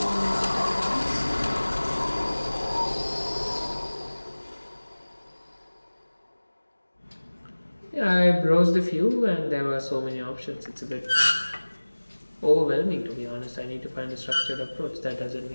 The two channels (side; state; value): both; inverted; correlation -1.00